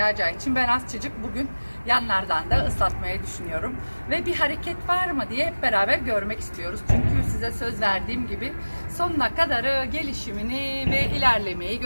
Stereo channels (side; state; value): both; inverted; correlation -1.00